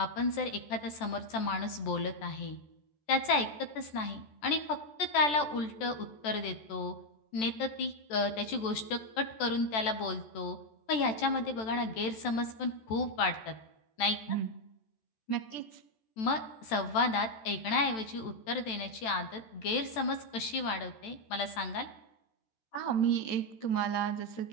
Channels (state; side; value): late; right; 14 ms